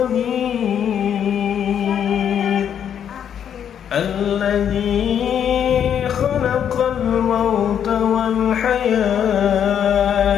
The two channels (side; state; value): right; quieter; 8.9 dB